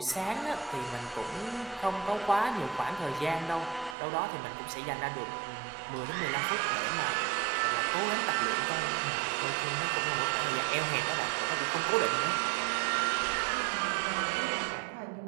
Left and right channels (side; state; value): left; drops out; at 4.0 s